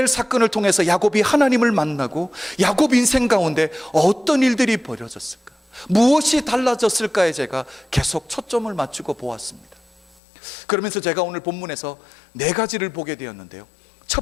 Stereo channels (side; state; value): right; drops out; at 10.2 s